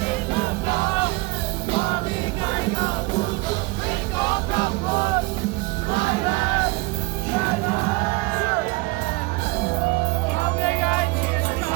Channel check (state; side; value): quieter; left; 23.8 dB